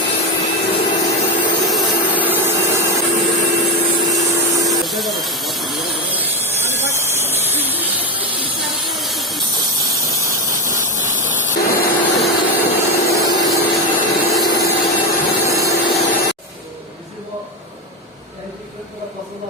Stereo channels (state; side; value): normal; both; correlation 0.15